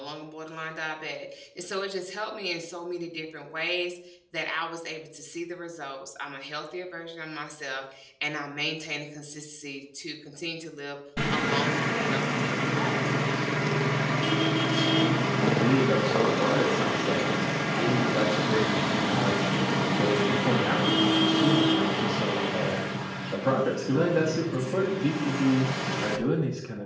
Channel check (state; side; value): identical; both; correlation 1.00